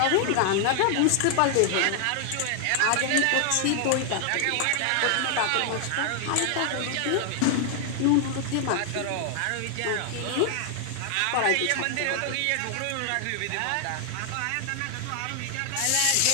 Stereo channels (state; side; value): different; both; correlation 0.00